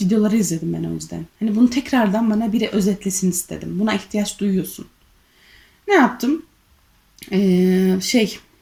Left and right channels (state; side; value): identical; both; correlation 1.00